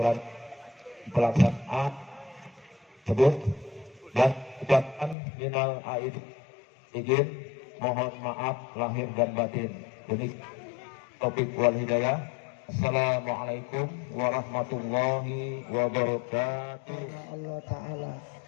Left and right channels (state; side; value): drops out; right; at 5.2 s